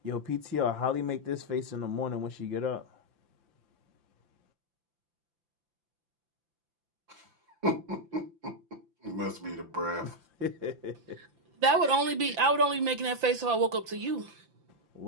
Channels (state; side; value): late; left; 5.9 ms